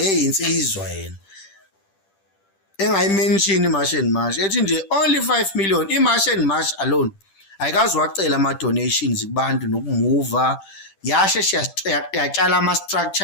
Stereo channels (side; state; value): right; late; 10 ms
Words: yena engayimention iMarch and March ethi nje only 5 million iMarch and March alone ayikazi wacela ama-donations kubantu nokumuva yasheshe yatshala